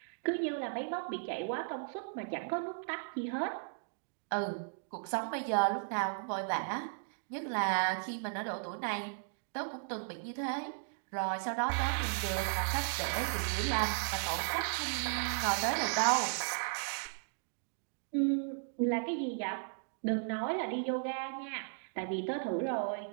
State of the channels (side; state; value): left; silent; digital silence